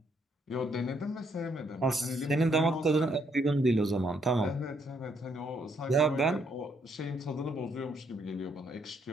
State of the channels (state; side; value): normal; both; correlation 0.72